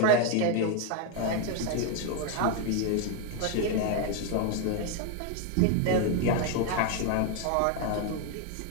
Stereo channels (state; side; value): different; both; correlation 0.01